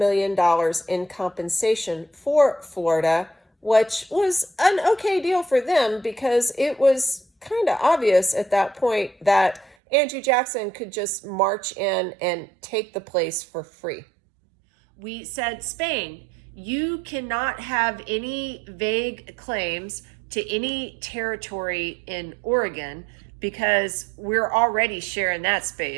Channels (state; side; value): drops out; left; at 9.8 s